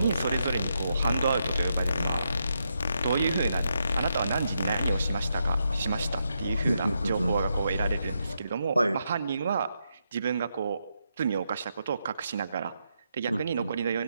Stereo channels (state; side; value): inverted; both; correlation -0.82